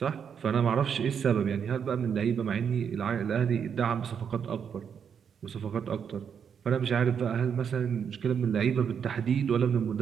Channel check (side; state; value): left; quieter; 7.4 dB